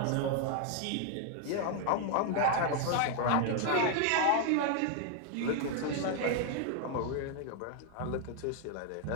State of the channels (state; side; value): different; both; correlation 0.00